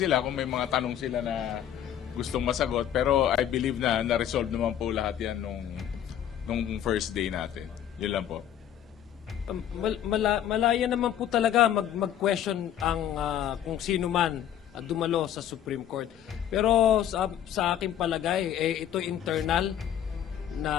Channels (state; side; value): quieter; right; 10.4 dB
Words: kung may mga tanong sila na gustong masagot, pero I believe na na-resolve naman po lahat yan nung first day natin. Yun lang po. Malaya naman po talaga mag-question ang kung sino man dumalo sa Supreme Court. Pero sa aking palagay, ito internal